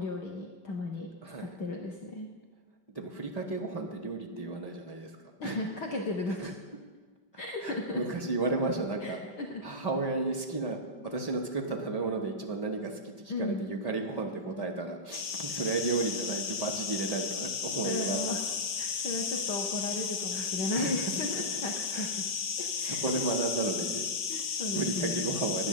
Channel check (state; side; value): late; right; 5.1 ms